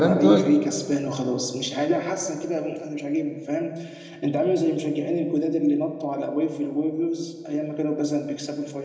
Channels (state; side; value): identical; both; correlation 1.00